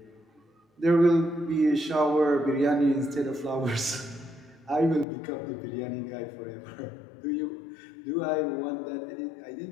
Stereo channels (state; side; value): drops out; right; at 5.1 s